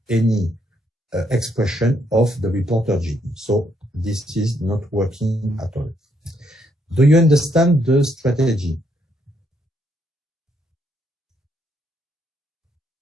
any expression of the reporter gene. So this is not working at all. Do you understand the strategy?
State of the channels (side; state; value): both; normal; correlation 0.74